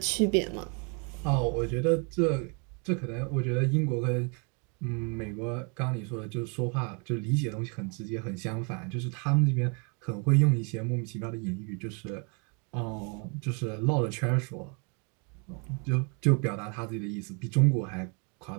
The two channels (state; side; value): quieter; left; 35.3 dB